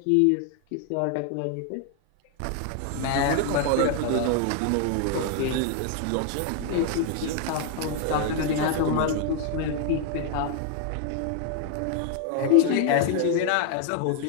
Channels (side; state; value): both; different; correlation 0.00